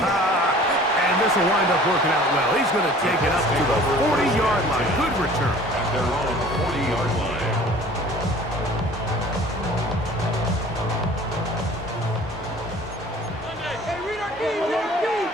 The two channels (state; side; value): normal; both; correlation 0.48